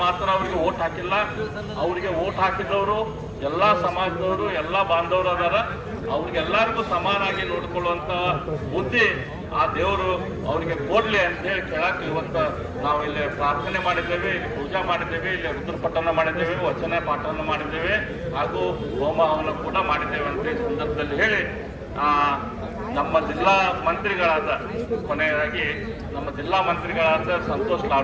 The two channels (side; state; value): both; identical; correlation 1.00